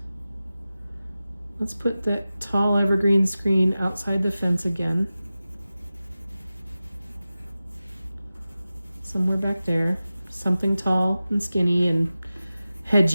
that tall evergreen screen outside the fence again. Somewhere back there. Something tall and skinny and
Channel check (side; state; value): both; inverted; correlation -0.95